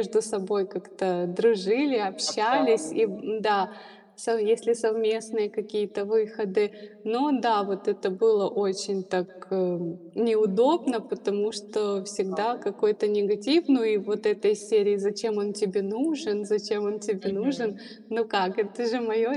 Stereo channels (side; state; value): both; identical; correlation 1.00